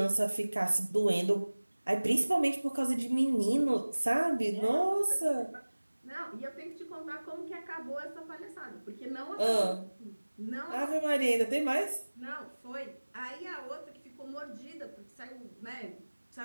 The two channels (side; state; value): both; inverted; correlation -1.00